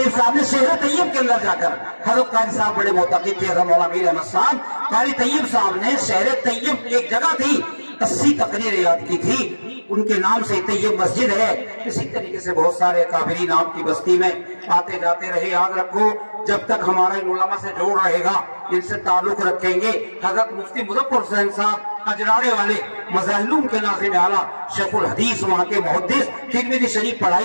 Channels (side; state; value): both; inverted; correlation -1.00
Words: साहब ने शहर तैयब के अंदर जाकर, हजरत कारी साहब बड़े मोहतकिद थे, हजरत मौलाना मीर अहमद साहब, कारी तैयब साहब ने शहर तैयब एक जगह थी 80 तकरीरें याद की थी, उनके नाम से तैयब मस्जिद है। इसी तरीके से बहुत सारे काबिरीन आपकी बस्ती में आते जाते रहे। याद रखो जब तक हमारा इन उलमा से जोड़ रहेगा, इनसे ताल्लुक रखेंगे। हजरत मुफ्ती मुजफ्फर हुसैन साहब अजराड़े वाले मज़ाहिलूम के नाज़िम आला शेखुल हदीस वहाँ के मुहद्दिस, तिरमिज़ी शरीफ